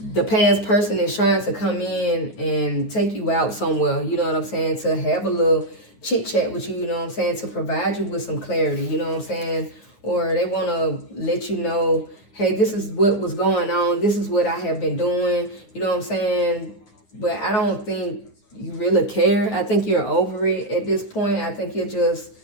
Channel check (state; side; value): late; right; 9.6 ms